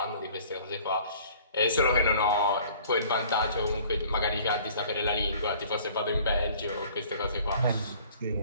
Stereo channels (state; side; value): inverted; both; correlation -0.51